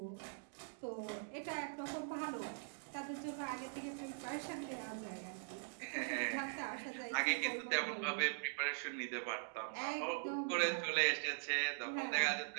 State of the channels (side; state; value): left; silent; digital silence